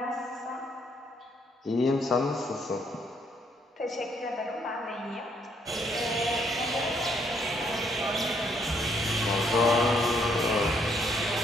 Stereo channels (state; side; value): normal; both; correlation 0.70